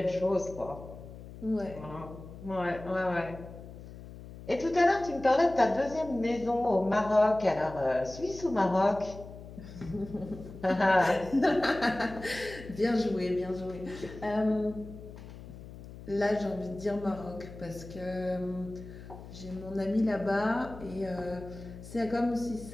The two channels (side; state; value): left; noise; hum, 15 dB below the sound